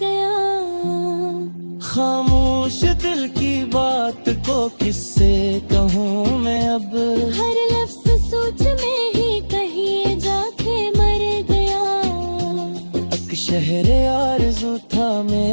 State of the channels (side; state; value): both; inverted; correlation -1.00